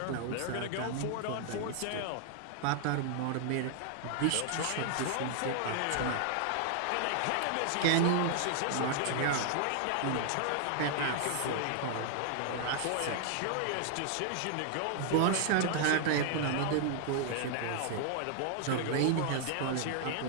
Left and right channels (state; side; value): different; both; correlation 0.00